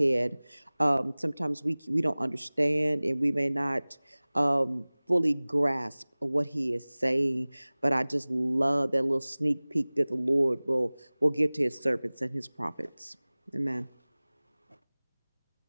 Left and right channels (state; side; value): inverted; both; correlation -1.00